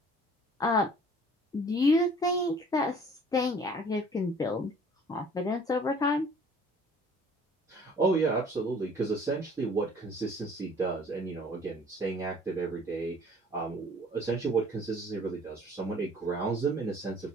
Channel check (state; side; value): normal; both; correlation 0.53